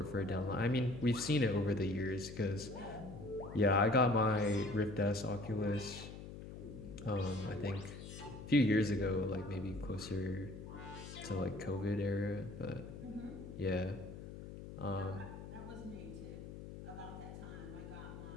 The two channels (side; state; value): left; noise; hum, 11 dB below the sound